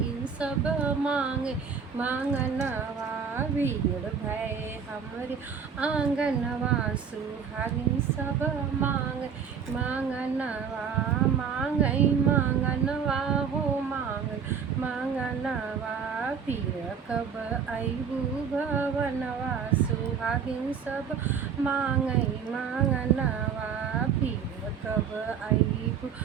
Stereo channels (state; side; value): quieter; left; 6.8 dB